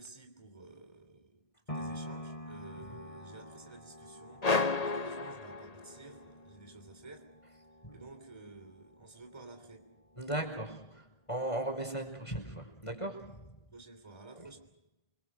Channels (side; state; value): right; late; 1.8 ms